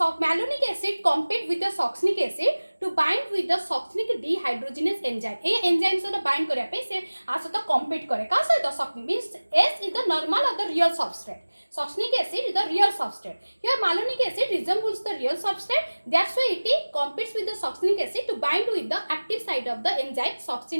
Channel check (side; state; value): both; inverted; correlation -1.00